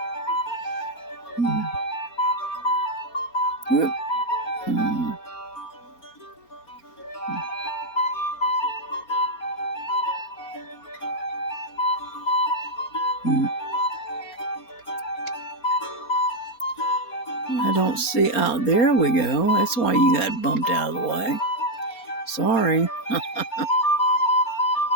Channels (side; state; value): right; late; 4.3 ms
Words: Whoop. I don't see. Oh, there we go. That's why you got bumped out of the way. Sorry.